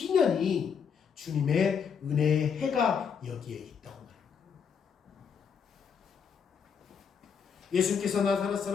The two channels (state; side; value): quieter; right; 6.7 dB